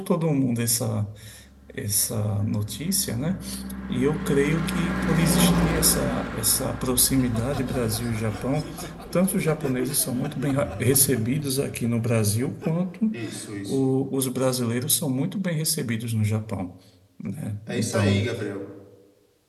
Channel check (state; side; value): identical; both; correlation 1.00